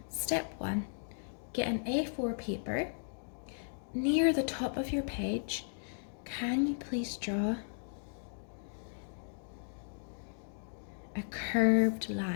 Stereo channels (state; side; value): silent; right; digital silence